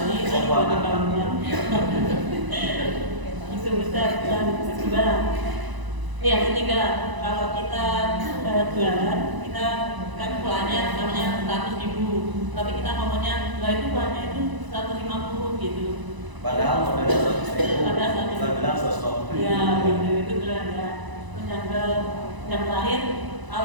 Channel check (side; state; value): left; late; 1.0 ms